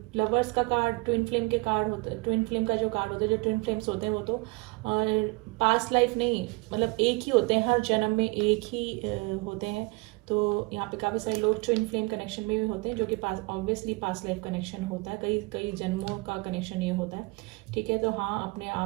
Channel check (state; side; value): quieter; left; 26.4 dB